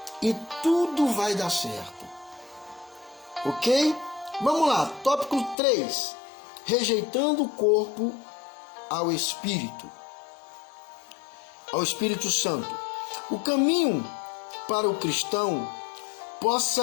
E tudo vai dar certo. Ok? Vamos lá, tópico 3. Rejeitando o corpo ao Espírito. Ao Espírito Santo. O caminho para o cristão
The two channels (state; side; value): drops out; right; at 5.6 s